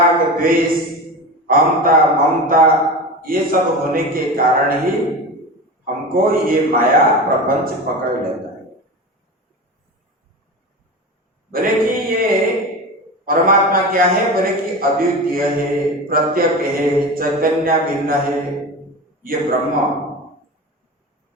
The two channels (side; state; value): both; normal; correlation 0.27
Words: द्वेष, अहंता ममता ये सब होने के कारण ही हमको ये माया प्रपंच पकड़ लेता है। बोले कि ये परमात्मा क्या है? बोले कि अद्वितीय है, प्रत्यक है, चैतन्य भिन्न है, ये ब्रह्म।